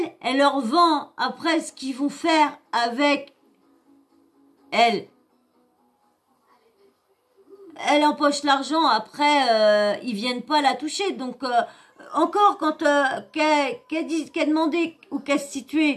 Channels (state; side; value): identical; both; correlation 1.00